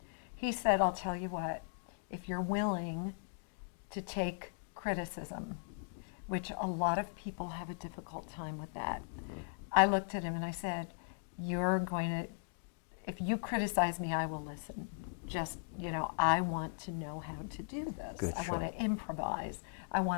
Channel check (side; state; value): right; silent; digital silence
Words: He said, I'll tell you what, if you're willing to take criticism, which a lot of people have a difficult time with that. I looked at him and I said, if you criticize me, I will listen. Just, I want to know how to do this. Good, I want to improvise. I